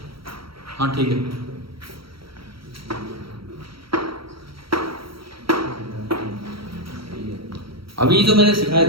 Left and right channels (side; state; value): left; late; 0.75 ms